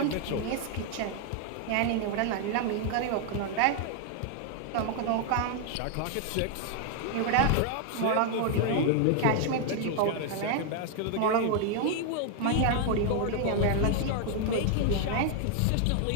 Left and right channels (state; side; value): different; both; correlation 0.00